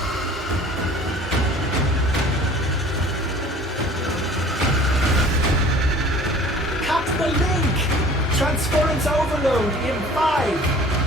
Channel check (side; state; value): both; normal; correlation 0.47